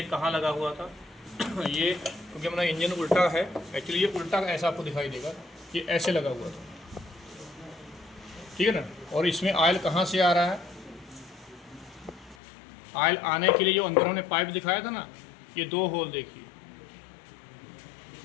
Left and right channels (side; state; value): right; drops out; at 12.4 s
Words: कहाँ लगा हुआ था। ये क्योंकि हमारा इंजन उल्टा है, एक्चुअली ये उल्टा ऐसा आपको दिखाई देगा, ये ऐसे लगा हुआ था, ठीक है ना। और इसमें ऑयल कहाँ से आ रहा है, ऑयल आने के लिए जो अंदर हमने पाइप दिखाया था ना, ये 2 होल देखिए,